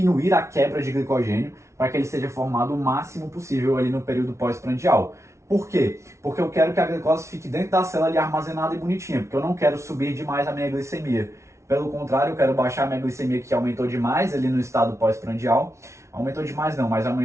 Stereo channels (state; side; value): late; left; 0.13 ms